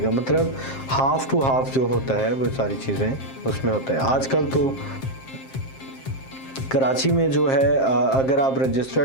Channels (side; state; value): right; late; 7.5 ms